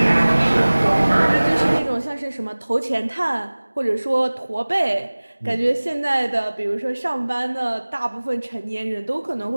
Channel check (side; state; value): both; inverted; correlation -1.00